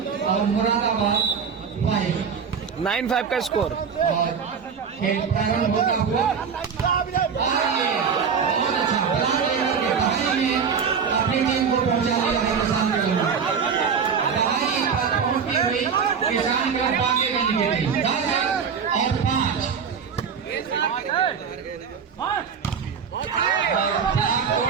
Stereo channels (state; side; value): quieter; left; 6.5 dB